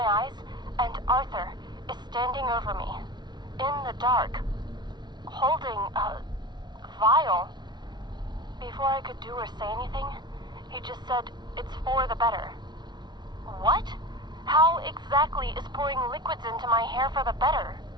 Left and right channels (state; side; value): late; left; 0.21 ms